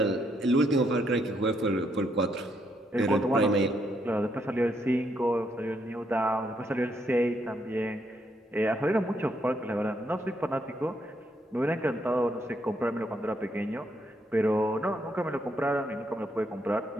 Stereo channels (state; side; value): normal; both; correlation 0.75